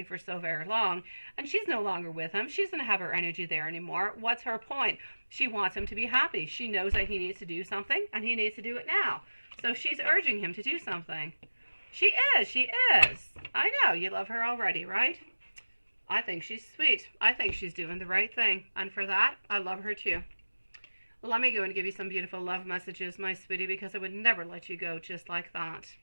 for so very long. And she's no longer with him. She doesn't have her energy there anymore. What's her point? She wants him to be happy. She knows that he needs to do something, and he needs to do it now. So she's urging him to do something. She is. I know, you love her already, right? I think she's sweet. I think she's doing the right thing. And for that, I love her too. Let me go and give you some beautiful love messages, my sweetie, because I would never let you go just like that.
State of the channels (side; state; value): both; inverted; correlation -1.00